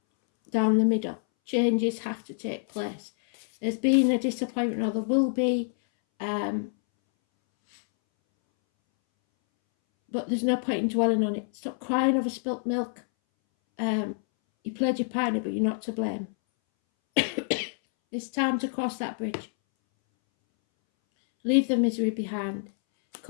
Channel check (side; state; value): right; silent; 60 dB below the other